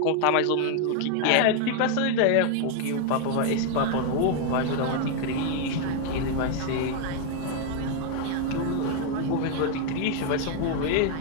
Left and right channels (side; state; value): both; different; correlation 0.01